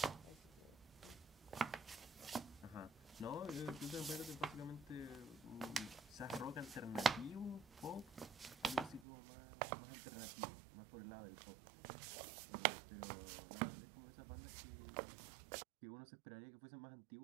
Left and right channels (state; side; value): drops out; left; at 9.1 s